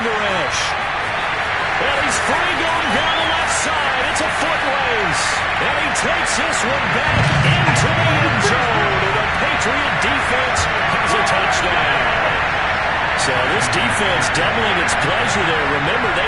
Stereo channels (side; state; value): both; identical; correlation 1.00